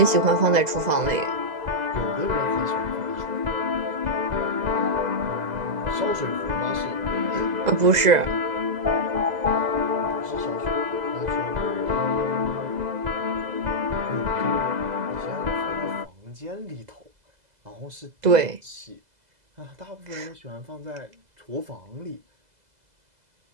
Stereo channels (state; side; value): late; left; 2.0 ms